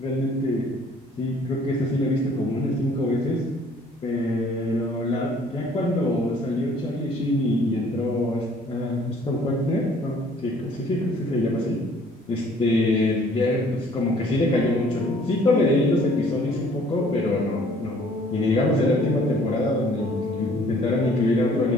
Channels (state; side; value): normal; both; correlation 0.57